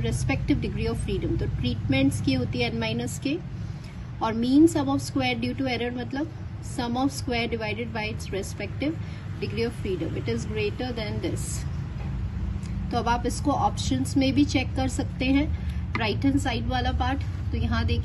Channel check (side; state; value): both; identical; correlation 1.00